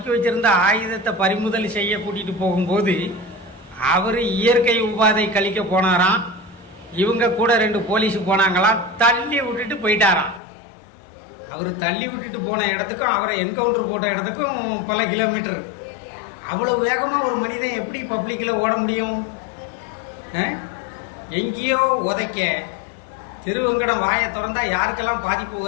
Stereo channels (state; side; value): drops out; right; at 10.4 s